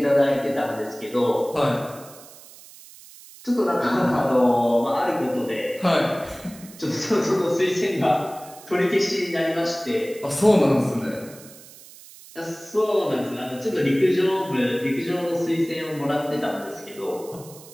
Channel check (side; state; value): right; noise; hiss, 20 dB below the sound